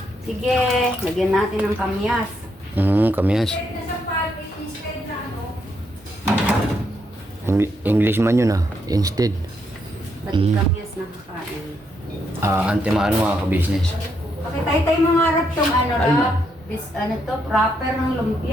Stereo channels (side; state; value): both; normal; correlation 0.77